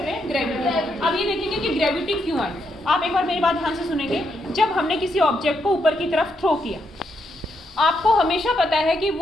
हैं? ग्रेविटी। अब ये देखेंगे कि ग्रेविटी क्यों आई। आप एक बार मेरी बात ध्यान से सुनेंगे। जब हमने किसी ऑब्जेक्ट को ऊपर की तरफ थ्रो किया, आपको हमेशा पता है कि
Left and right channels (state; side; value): normal; both; correlation 0.79